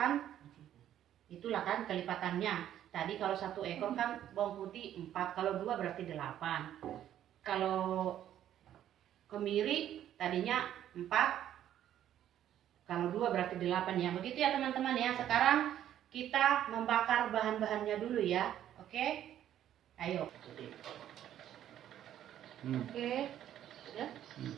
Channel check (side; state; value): left; quieter; 11.2 dB